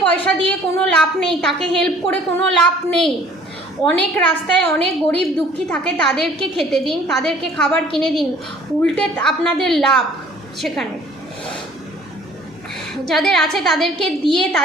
পয়সা দিয়ে কোনো লাভ নেই, তাকে হেল্প করে কোনো লাভ নেই। অনেক রাস্তায় অনেক গরিব দুঃখী থাকে, তাদেরকে খেতে দিন, তাদেরকে খাবার কিনে দিন, উল্টে আপনাদের লাভ সেখানে। যাদের আছে তাদেরকে দিয়ে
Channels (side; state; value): both; normal; correlation 0.54